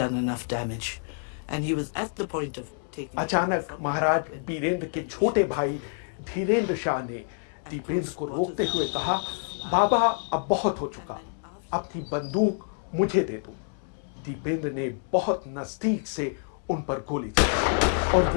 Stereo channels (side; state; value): right; silent; digital silence